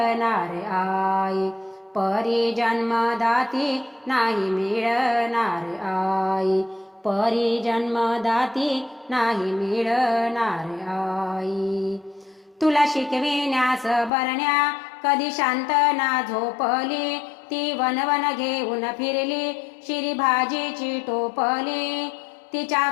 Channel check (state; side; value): drops out; right; at 14.1 s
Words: आई. परी जन्मदाती नाही मिळणार आई. परी जन्मदाती नाही मिळणार आई. तुला शिकविण्यास बरण्या कधी शांत ना झोपली, ती वनवन घेऊन फिरली शिरी भाजीची टोपली. तिच्या